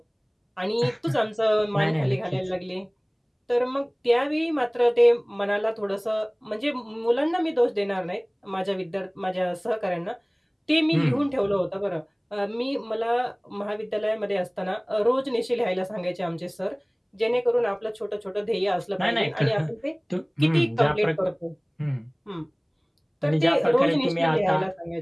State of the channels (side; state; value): both; identical; correlation 1.00